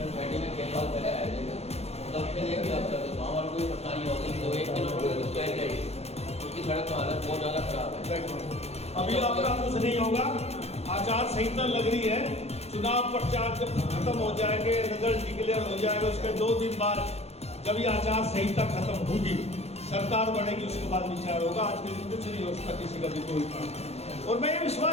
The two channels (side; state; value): right; late; 0.30 ms